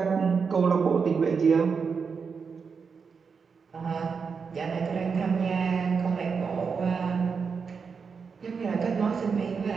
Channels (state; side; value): quieter; left; 5.6 dB